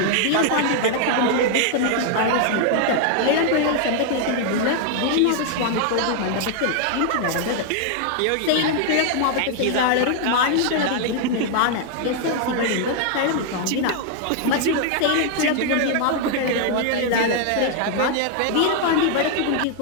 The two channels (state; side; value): different; both; correlation 0.00